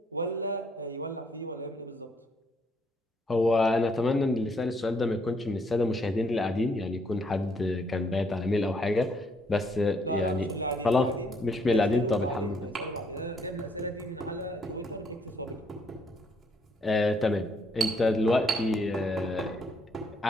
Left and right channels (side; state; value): both; normal; correlation 0.70